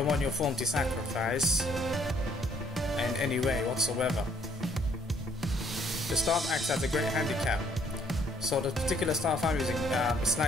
want your form to sacrifice in any way whatsoever. The staff acts as a great handicap. So the particular staff I'm using is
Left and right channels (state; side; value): normal; both; correlation 0.65